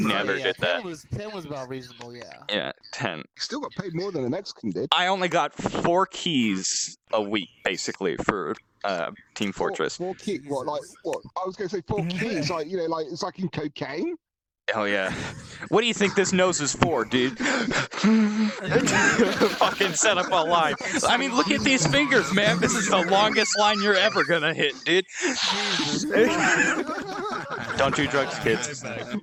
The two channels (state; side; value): identical; both; correlation 1.00